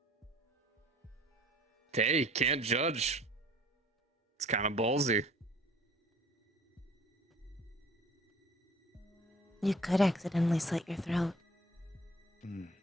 Hey, can't judge. It's kind of ballsy. You could accidentally slit your throat.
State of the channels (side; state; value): both; normal; correlation 0.50